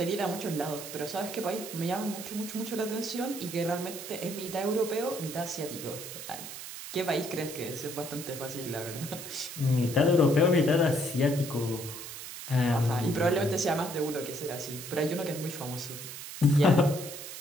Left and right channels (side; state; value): right; noise; hiss, 10 dB below the sound